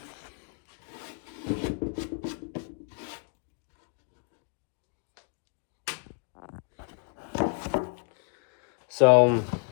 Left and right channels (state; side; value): quieter; right; 37.7 dB